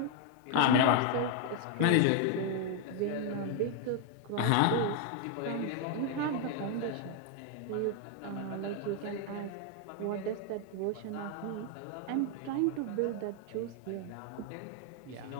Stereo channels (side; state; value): both; different; correlation 0.00